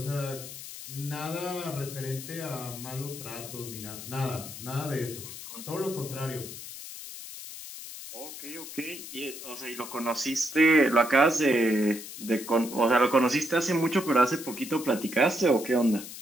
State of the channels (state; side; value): noise; left; hiss, 11 dB below the sound